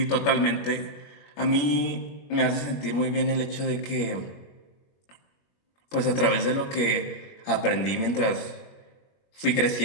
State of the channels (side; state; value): right; late; 21 ms